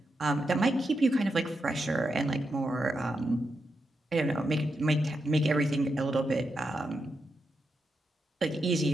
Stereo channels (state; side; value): normal; both; correlation 0.85